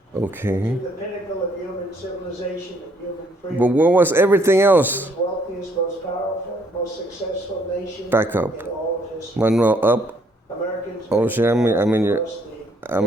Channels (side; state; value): both; normal; correlation 0.67